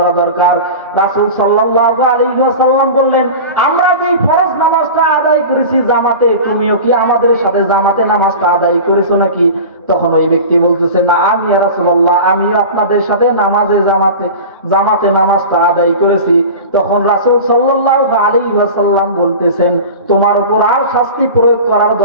দরকার। রাসূল সাল্লাল্লাহু আলাইহি ওয়াসাল্লাম বললেন, আমরা যে ফরজ নামাজটা আদায় করেছি জামাতে, তুমিও কি আমাদের সাথে জামাতে নামাজটা আদায় করেছো নাকি? তখন ওই ব্যক্তি বলতেছে, না, আমি ইয়া রাসূলুল্লাহ, আমিও আপনাদের সাথে জামাতে নামাজটা আদায় করেছি। তখন রাসূল সাল্লাল্লাহু আলাইহি ওয়াসাল্লাম বলতেছেন, তোমার উপর আর শাস্তি প্রয়োগ করার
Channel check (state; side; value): inverted; both; correlation -0.33